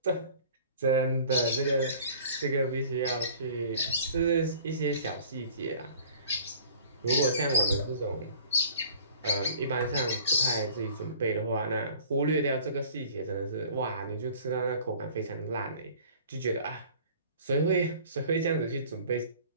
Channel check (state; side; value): inverted; both; correlation -0.49